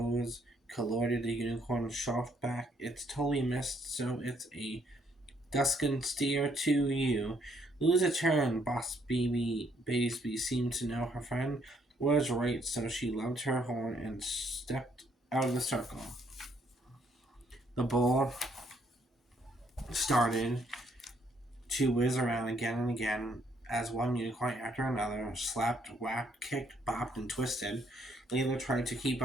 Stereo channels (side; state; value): both; normal; correlation 0.69